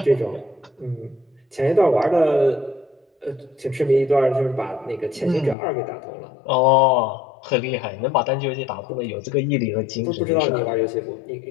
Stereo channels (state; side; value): drops out; right; at 5.6 s